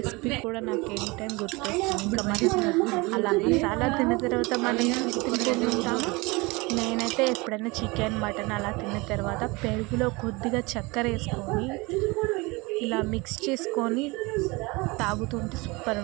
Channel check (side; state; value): left; quieter; 24.9 dB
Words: కూడా నాకు ఎనీ టైం గుర్తొస్తుంది. ఇంకా మరి అలా మసాలా తిన్న తర్వాత మనం తింటుంటాము. నేనైతే ఎప్పుడైనా చికెన్ మటన్ అలా తిన్న తర్వాత పెరుగులో కొద్దిగా చక్కెర వేసుకొని ఇలా మిక్స్ చేసుకొని తాగుతుంటే సూపర్